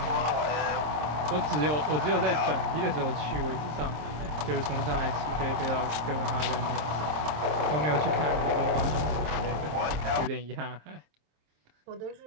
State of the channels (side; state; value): left; late; 26 ms